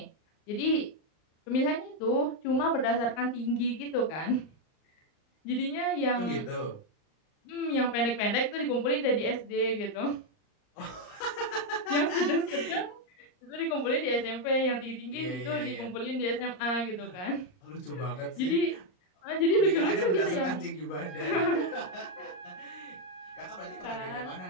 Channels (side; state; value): right; late; 39 ms